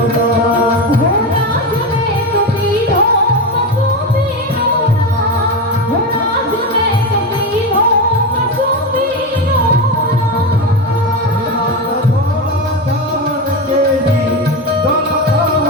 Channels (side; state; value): both; normal; correlation 0.17